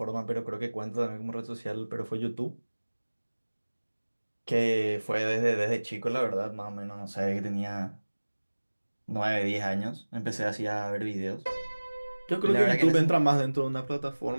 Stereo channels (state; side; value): inverted; both; correlation -1.00